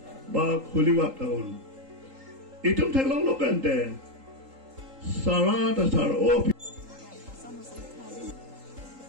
ba kuliwat tahun. Itu tengok lo kan deh. Salah dan salah. Oh.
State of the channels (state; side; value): late; left; 3.8 ms